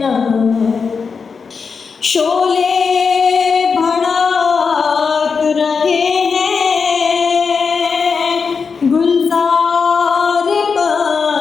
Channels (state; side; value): quieter; right; 5.4 dB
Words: शोले भड़क रहे गुलजार